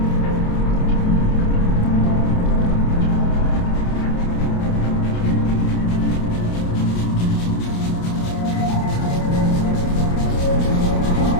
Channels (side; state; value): right; late; 28 ms